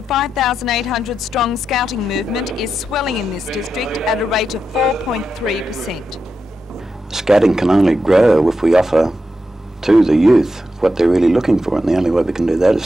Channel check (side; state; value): both; normal; correlation 0.87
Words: 5,800 strong scouting movement is swelling in this district at a rate of 4.3%. Scouting can only grow if we offer to the youth what they're really looking for, and the only way we can do that